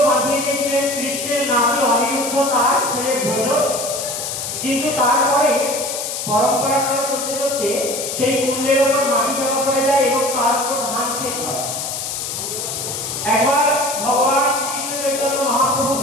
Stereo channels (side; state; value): left; noise; hiss, 4 dB below the sound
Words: বাঁধিয়ে দিয়েছিলেন কৃষ্ণের নাতি অনিরুদ্ধ, তার ছেলে ভোজ। কিন্তু তারপরে পরম্পরাক্রমে চলতে চলতে সেই কুণ্ডের উপর মাটি জমা পড়ে যায় এবং তার উপর ধান ক্ষেত হয়। একবার ভগবান শ্রীকৃষ্ণ চৈতন্য মহাপ্রভু